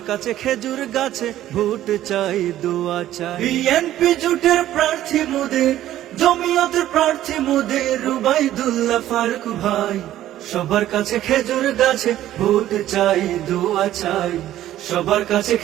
কাছে খেজুর গাছে ভোট চাই, দোয়া চাই। বিএনপি জোটের প্রার্থী মোদের, জমিয়তের প্রার্থী মোদের, রুবাইদুল্লাহ ফারুক ভাই। সবার কাছে খেজুর গাছে ভোট চাই, দোয়া চাই। সবার কাছে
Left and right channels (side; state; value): left; quieter; 13.1 dB